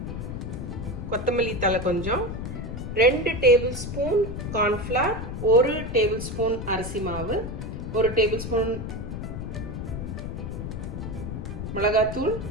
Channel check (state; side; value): noise; left; rumble, 6 dB below the sound